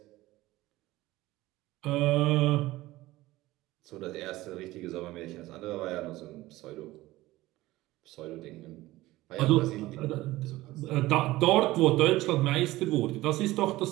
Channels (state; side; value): quieter; left; 17.8 dB